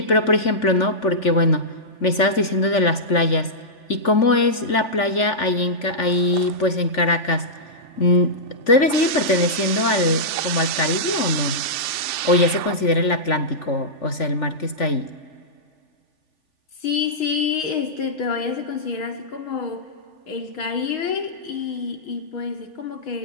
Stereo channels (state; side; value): late; right; 3.5 ms